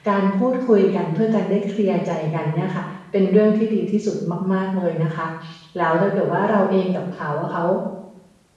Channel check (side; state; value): both; identical; correlation 1.00